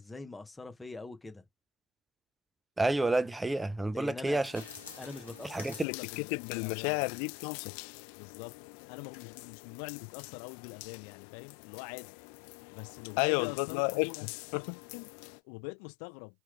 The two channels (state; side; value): drops out; right; at 5.9 s